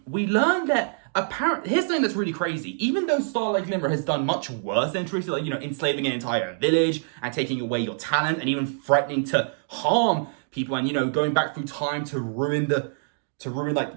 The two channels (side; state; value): left; silent; digital silence